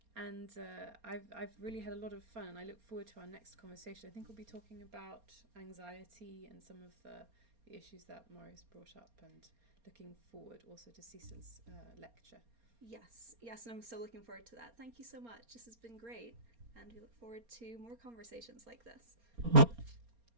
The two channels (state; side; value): late; left; 4.3 ms